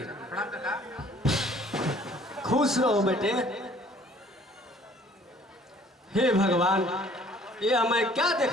प्रणाम काका। खुश रहो बेटे। हे भगवान, ये मैं क्या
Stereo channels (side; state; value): both; normal; correlation 0.56